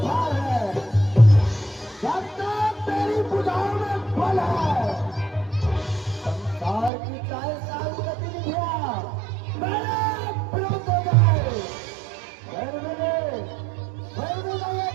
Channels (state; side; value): drops out; left; at 6.9 s